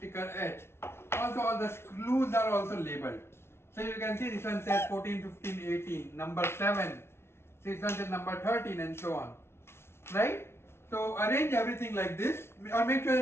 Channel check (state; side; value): late; right; 0.12 ms